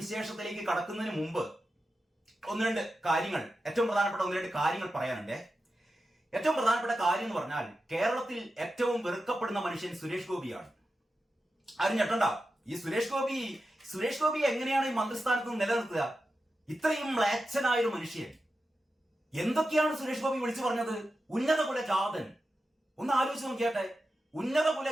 കടക്കുന്നതിന് മുമ്പ് ഏറ്റവും പ്രധാനപ്പെട്ട ഒന്ന് രണ്ട് കാര്യങ്ങൾ പറയാനുണ്ട്. ഏറ്റവും പ്രധാനപ്പെട്ട കാര്യം എന്ന് പറഞ്ഞാൽ കേരളത്തിൽ ഏറ്റവും വെറുക്കപ്പെടുന്ന മനുഷ്യൻ സുരേഷ് ഗോപിയാണ്. ആരും ഞെട്ടണ്ട. ഈ സുരേഷ് ഗോപി എങ്ങനെയാണ് ഈ മന്ത്രിസ്ഥാനത്ത് നിന്ന് നിലനിർത്തുക? ഇത്രയും മ്ലേച്ഛനായൊരു മനുഷ്യൻ. എന്തൊക്കെയാണ് സുരേഷ് ഗോപി വിളിച്ചു പറഞ്ഞത്? ഉന്നത കുലജാതൻ. ഒന്ന് ആലോചിച്ച് നോക്കിയാട്ടെ. ഉന്നത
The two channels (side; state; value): both; normal; correlation 0.91